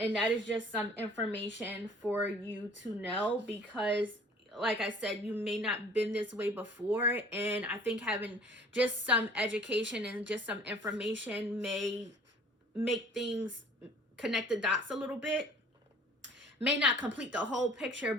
that is just some information for you to know, because like I said, you may not been this way before, and I think having just some education and just some information may make things connect the dots a little bit. May not complete the whole picture,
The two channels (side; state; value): both; normal; correlation 0.51